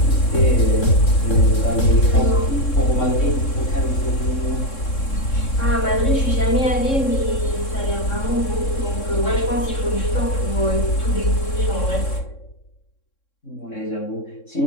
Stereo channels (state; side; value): late; right; 3.7 ms